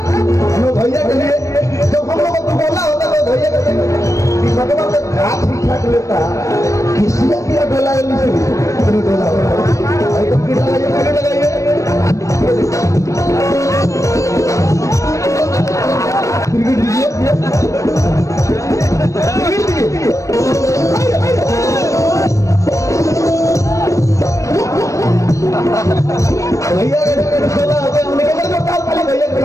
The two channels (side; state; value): right; late; 0.15 ms